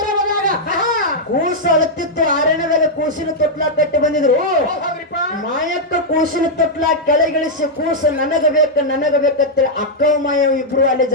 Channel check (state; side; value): normal; both; correlation -0.04